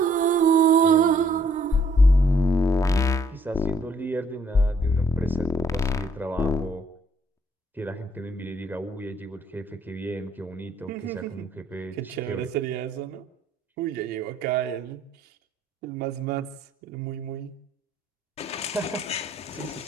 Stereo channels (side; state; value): both; normal; correlation 0.65